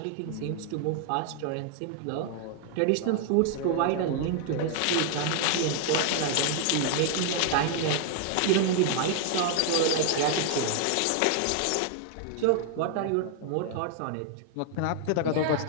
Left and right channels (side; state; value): both; different; correlation 0.00